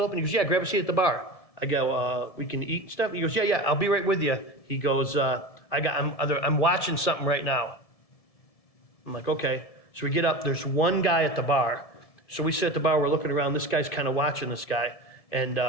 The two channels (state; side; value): late; right; 1.7 ms